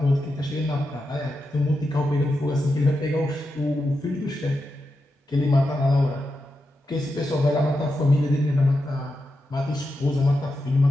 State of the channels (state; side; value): normal; both; correlation 0.88